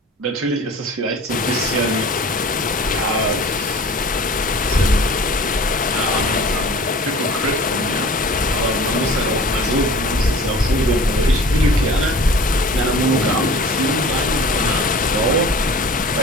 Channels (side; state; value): both; normal; correlation 0.43